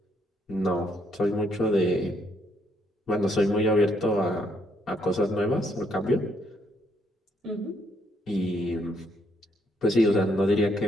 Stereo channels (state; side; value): normal; both; correlation 0.72